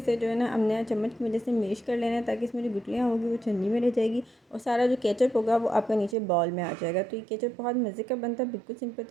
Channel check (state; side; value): drops out; left; at 6.2 s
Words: जो है ना हमने चम्मच की वजह से मैश कर लेना है, ताकि इसमें जो गुठलियाँ होगी वो छन्नी में रह जाएगी और सारा जो केचप होगा वो आपका नीचे बॉल में आ जाएगा। तो ये केचप बहुत मज़े का बनता है, बिल्कुल सिंपल